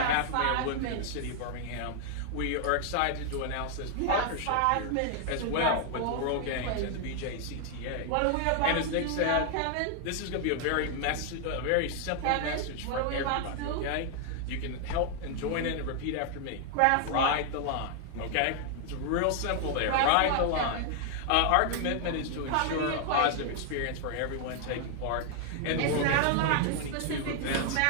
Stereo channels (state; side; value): different; both; correlation 0.00